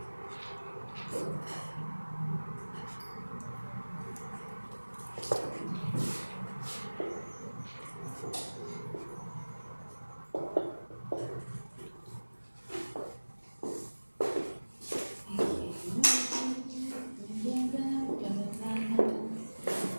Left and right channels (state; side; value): inverted; both; correlation -1.00